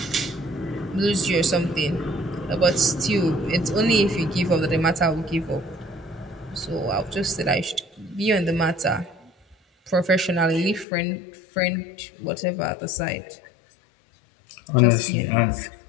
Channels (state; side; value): drops out; right; at 10.9 s